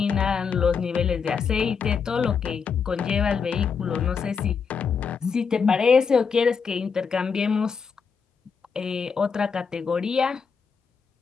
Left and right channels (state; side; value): quieter; right; 5.9 dB